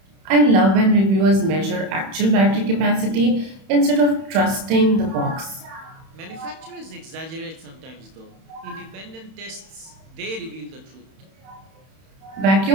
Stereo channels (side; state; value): left; late; 31 ms